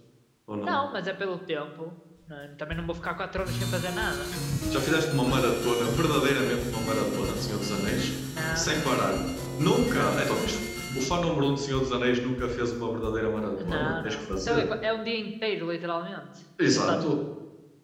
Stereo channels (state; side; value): identical; both; correlation 1.00